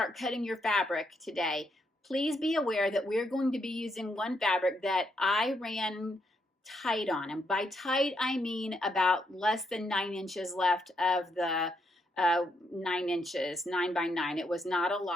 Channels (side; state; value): both; normal; correlation 0.77